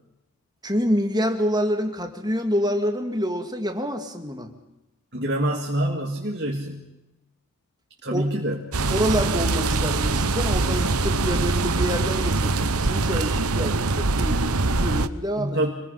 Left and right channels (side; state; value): both; normal; correlation 0.61